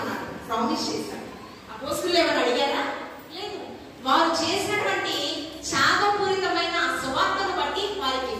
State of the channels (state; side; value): identical; both; correlation 1.00